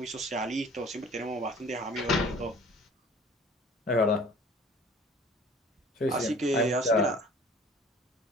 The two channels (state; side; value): normal; both; correlation 0.48